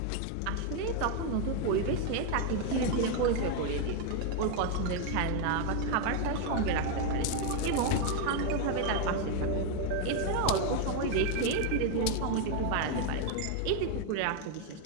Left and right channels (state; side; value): different; both; correlation 0.01